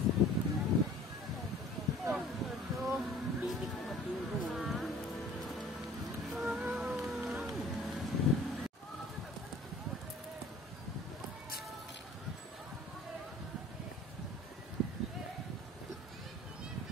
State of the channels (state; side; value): normal; both; correlation 0.49